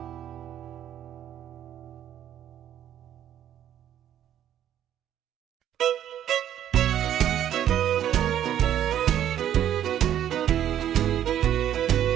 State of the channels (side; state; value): left; quieter; 10.7 dB